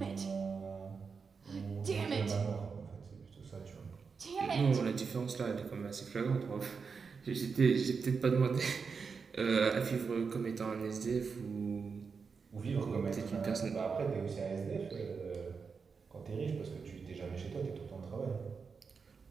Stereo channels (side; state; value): left; quieter; 5.4 dB